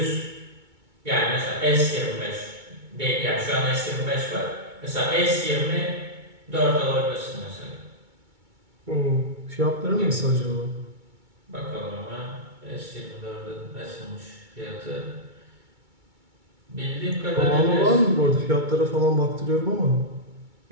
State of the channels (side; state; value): left; late; 2.2 ms